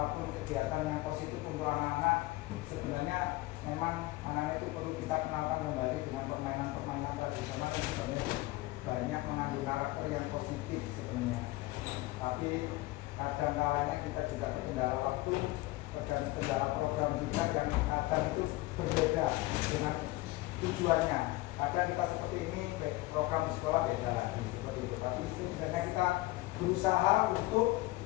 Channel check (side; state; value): right; quieter; 19.6 dB